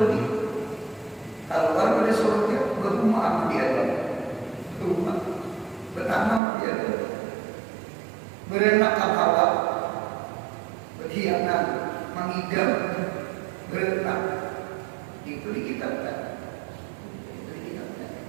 Kalau pada surga berumah di Adam, berumah bertanam di Adam, berenak Hawa, berkhianat, mengidam, berenak. Itu dikitabkan.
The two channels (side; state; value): left; drops out; at 6.4 s